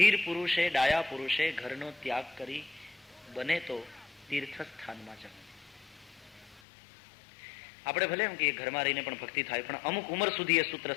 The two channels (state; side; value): drops out; right; at 6.6 s